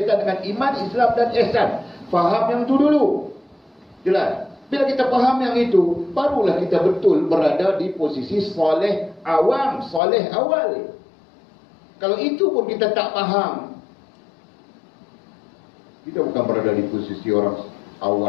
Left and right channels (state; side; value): drops out; right; at 10.0 s